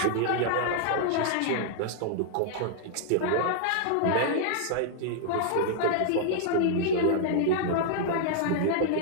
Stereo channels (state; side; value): different; both; correlation -0.01